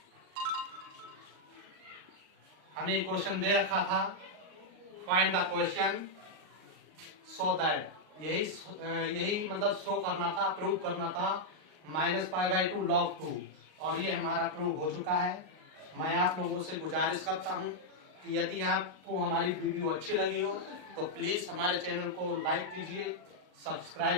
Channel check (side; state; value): left; late; 38 ms